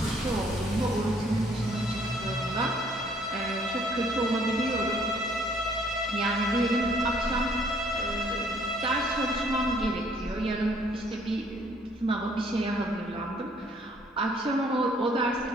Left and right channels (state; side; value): normal; both; correlation 0.62